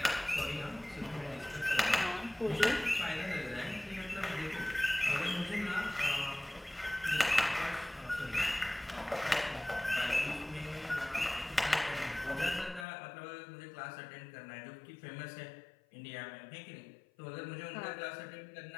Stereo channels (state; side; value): drops out; right; at 12.9 s